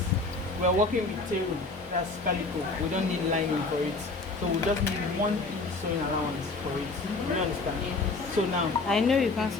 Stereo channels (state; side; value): quieter; right; 3.5 dB